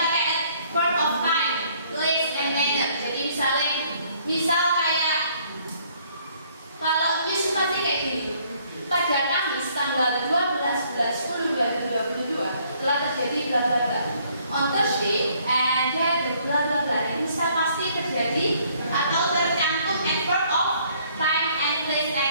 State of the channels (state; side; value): inverted; both; correlation -0.63